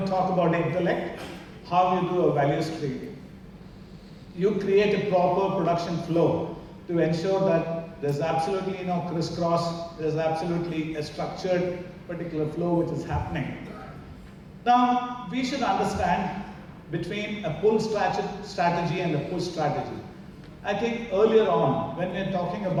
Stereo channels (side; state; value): both; identical; correlation 1.00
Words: talk about intellect, how you do a value stream. You create a proper production flow to ensure that there's absolutely no crisscross, there's absolutely a structured particular flow which is happening. Now, we should understand between a pull strategy and a push strategy. I think earlier on, when we were talking